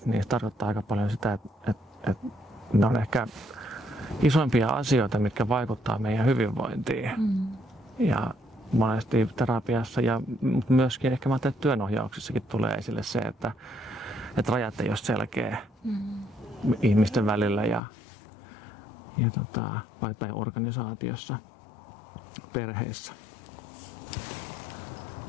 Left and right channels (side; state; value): right; drops out; at 17.8 s